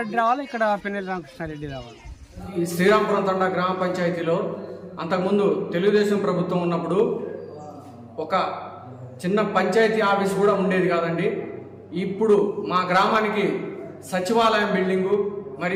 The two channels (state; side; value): identical; both; correlation 1.00